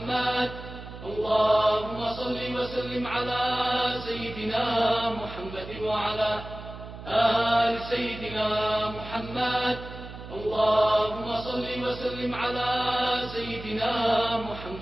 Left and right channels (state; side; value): noise; right; hum, 13 dB below the sound